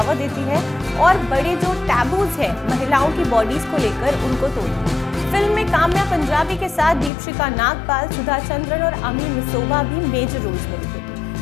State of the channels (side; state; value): right; drops out; at 7.1 s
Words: देती है और बड़े जो टैबूज है महिलाओं की बॉडीज को लेकर उनको तोड़ती है। फिल्म में काम्या पंजाबी के साथ दीपशिका नागपाल, सुधा चंद्रन और अमी मिसोवा भी मेजर रोल्स में दिखे।